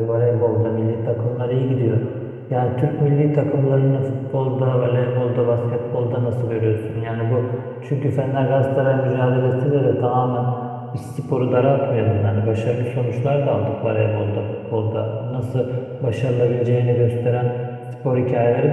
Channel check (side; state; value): both; identical; correlation 1.00